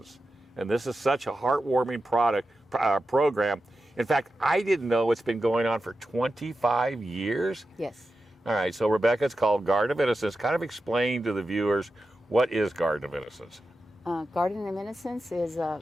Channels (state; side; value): normal; both; correlation 0.91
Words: and this is such a heartwarming program. In fact, I didn't know it's been going on for 25 years. Yes. All right, so Rebecca, it's called Garden of Innocence. Kind of explain to the viewers, what is Garden of Innocence? Garden of Innocence is an